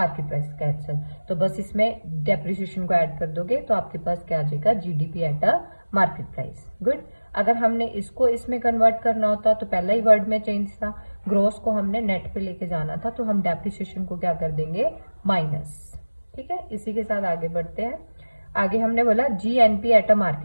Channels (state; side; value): inverted; both; correlation -1.00